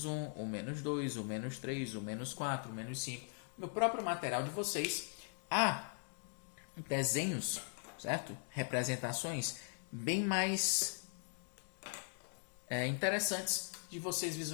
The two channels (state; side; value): silent; right; 51 dB below the other